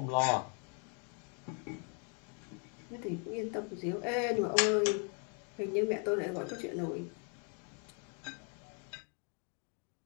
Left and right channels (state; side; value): quieter; right; 39.1 dB